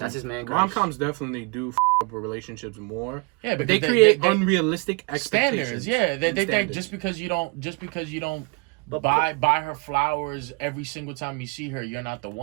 his man crush. rom-coms definitely do up with relationships more. Yeah, But because they create they unrealistic expectations. standards. Yeah, they Standards. just because you don't But buy her flowers every single time you see her, you're not the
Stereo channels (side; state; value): left; quieter; 29.6 dB